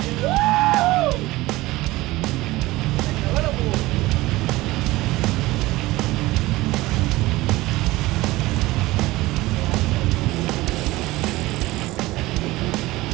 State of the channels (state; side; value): quieter; left; 19.1 dB